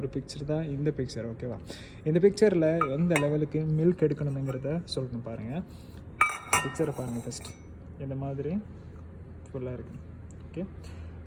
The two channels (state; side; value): identical; both; correlation 1.00